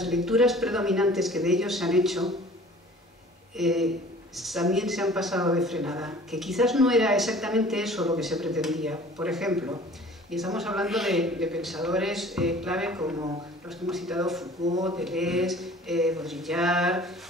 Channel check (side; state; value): both; normal; correlation 0.48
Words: lecturas predominantes que de ellos se han hecho también se han pasado de frenada, que quizás no era exactamente eso lo que se pretendía. Por ejemplo, y estamos hablando de pensadores clave como los que hemos citado, Foucault, Deleuze, Baudrillard,